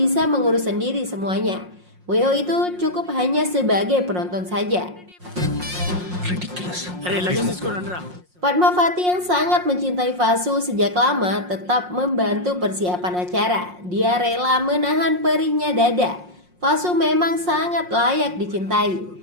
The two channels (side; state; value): left; late; 5.6 ms